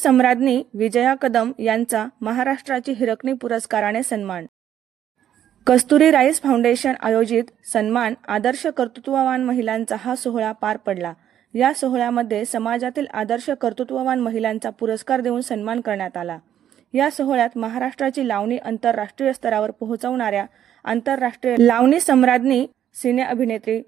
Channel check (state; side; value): quieter; left; 10.5 dB